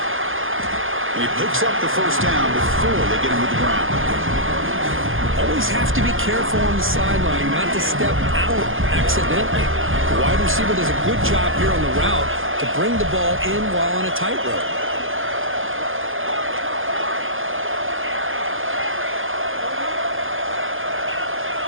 And he picks up the first down before they get him to the ground. Always have to be careful on the sideline not to step out accidentally. The wide receiver does a good job here on the route to bring the ball in while on a tightrope.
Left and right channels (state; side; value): late; left; 0.59 ms